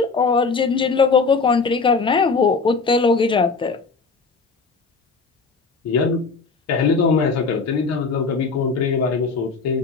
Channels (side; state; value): right; quieter; 4.5 dB